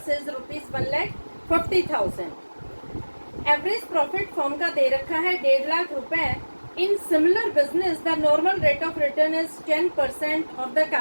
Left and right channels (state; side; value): inverted; both; correlation -1.00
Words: is ₹1,40,000। Average profit firm का दे रखा है 1.5 लाख रुपए। In similar business the normal rate of return is 10% of the